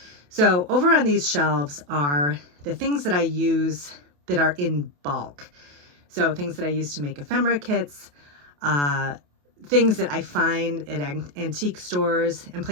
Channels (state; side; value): late; left; 28 ms